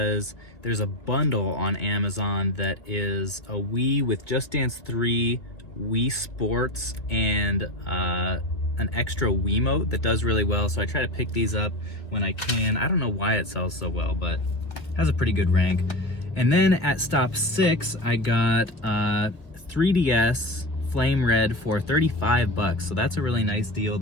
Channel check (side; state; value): right; late; 2.5 ms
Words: there's a bundle on Amazon that is a Wii with Just Dance 3, Wii Sports, and an extra Wiimote that does really well, so I try to pick these up when I can. I don't know why it sells so well, but it has a pretty good rank. And then at stop 6, I got 3DS Flame Red for 35 bucks, so that's a really nice deal.